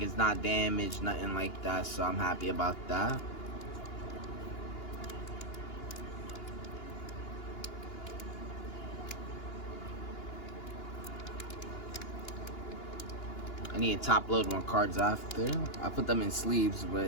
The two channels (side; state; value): right; late; 2.9 ms